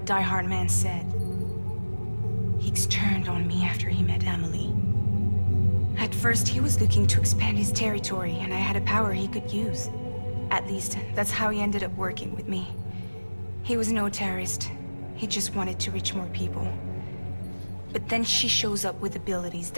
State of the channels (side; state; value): both; inverted; correlation -1.00